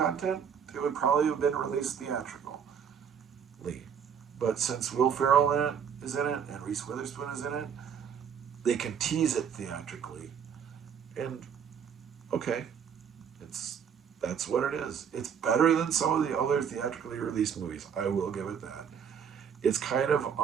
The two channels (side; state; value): left; quieter; 7.6 dB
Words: it would probably have been released theatrically. But since Will Ferrell is in it and Reese Witherspoon is in it, they can tease it theatrically. And okay, it's that's what it is. It's better than some of the other theatrically released movies. I will give it that. It's kind of